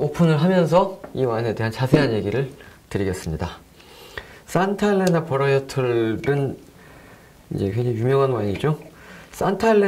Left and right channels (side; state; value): both; identical; correlation 1.00